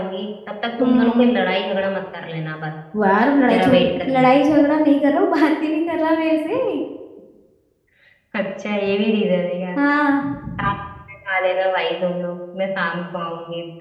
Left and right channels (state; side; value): identical; both; correlation 1.00